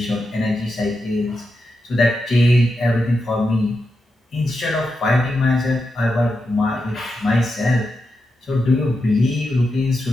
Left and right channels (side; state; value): both; normal; correlation 0.87